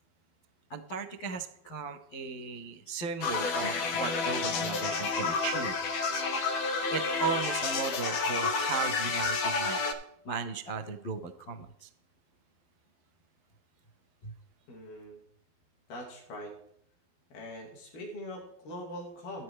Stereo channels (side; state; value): right; late; 12 ms